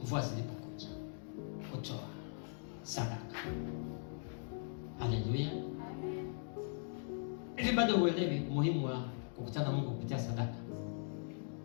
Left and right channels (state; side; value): silent; right; digital silence